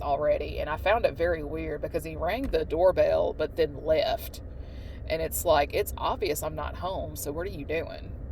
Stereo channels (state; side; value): identical; both; correlation 1.00